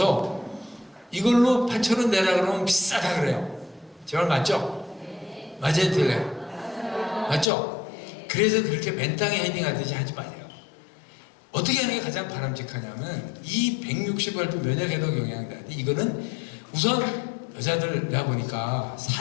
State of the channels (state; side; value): drops out; right; at 7.5 s